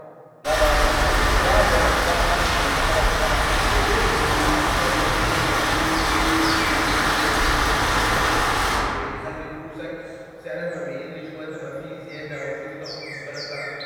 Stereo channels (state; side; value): identical; both; correlation 1.00